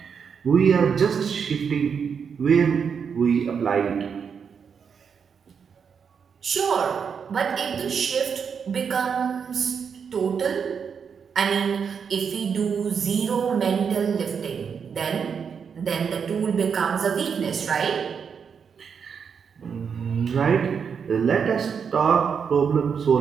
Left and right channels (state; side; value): quieter; left; 6.6 dB